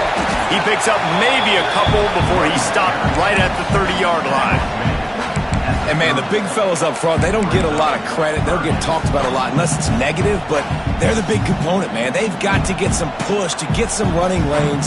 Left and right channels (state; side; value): identical; both; correlation 1.00